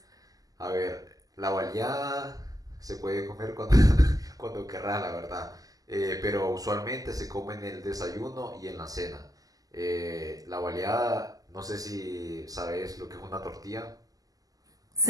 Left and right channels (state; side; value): late; left; 0.17 ms